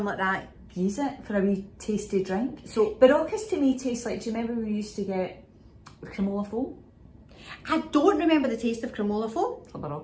like that. Use it for a wee tasty drink. So Baroccas to me taste like, do you remember we used to get cremola foam? I don't remember the taste of cremola foam. A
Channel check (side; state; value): both; identical; correlation 1.00